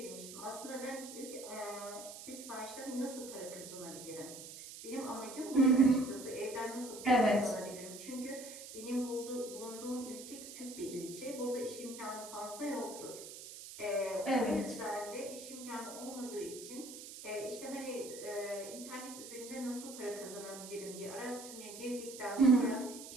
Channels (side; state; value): right; noise; hiss, 12 dB below the sound